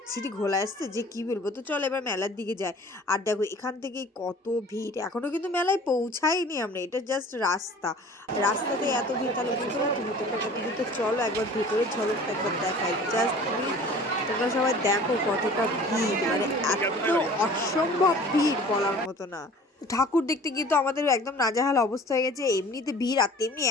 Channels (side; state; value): both; normal; correlation 0.46